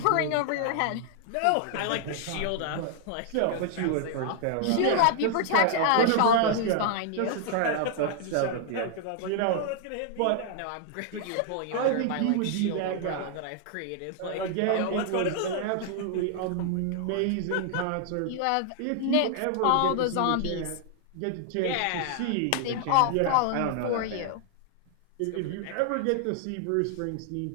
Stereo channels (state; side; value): different; both; correlation 0.00